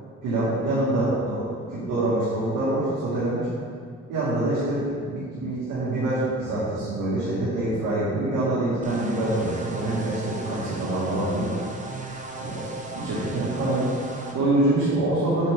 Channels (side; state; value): both; normal; correlation 0.38